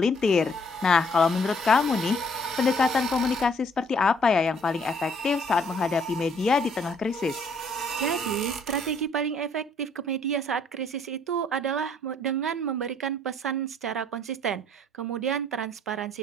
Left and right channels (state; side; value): normal; both; correlation 0.63